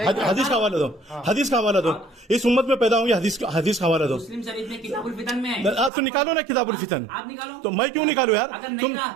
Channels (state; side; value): drops out; left; at 5.9 s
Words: हदीस का हवाला दो, इस उम्मत में पैदा होंगे, हदीस का हवाला दो। मुस्लिम शरीफ में किताबुल फितन में है। तो निकालो ना किताबुल फितन। आप निकालो। तो मैं क्यों निकालू यार? तुम